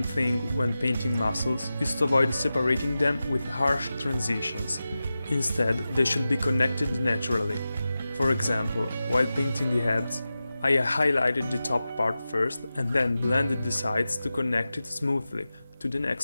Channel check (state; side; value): inverted; both; correlation -0.94